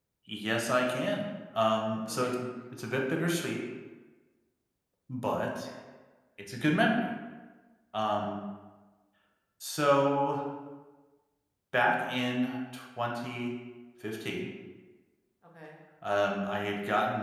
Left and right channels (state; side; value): identical; both; correlation 1.00